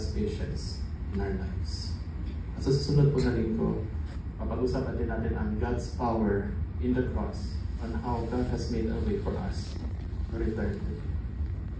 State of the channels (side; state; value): both; identical; correlation 1.00